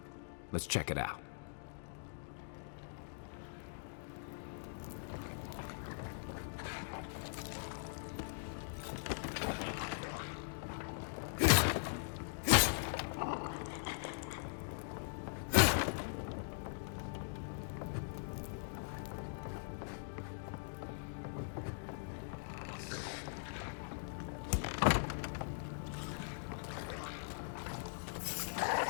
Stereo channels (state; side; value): silent; right; digital silence